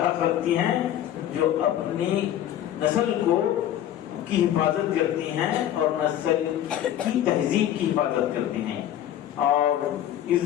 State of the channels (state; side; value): quieter; right; 11.5 dB